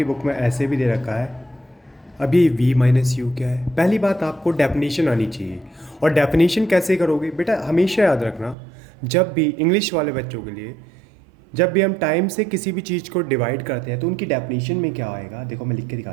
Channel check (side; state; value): left; drops out; at 8.6 s